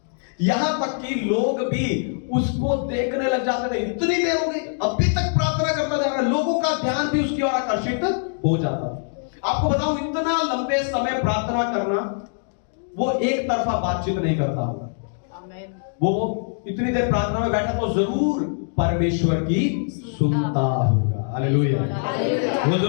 यहां तक कि लोग भी उसको देखने लग जाते थे। इतनी देर हो गई, अभी तक प्रार्थना करता जा रहा है। लोगों का ध्यान भी उसकी ओर आकर्षित हो जाता। आपको बताऊं, इतना लंबे समय प्रार्थना करना, वो एक तरफा बातचीत नहीं करता होगा। वो इतनी देर प्रार्थना में बैठा तो जरूर परमेश्वर की सुनता होगा। हालेलुया। वो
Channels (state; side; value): silent; right; 63 dB below the other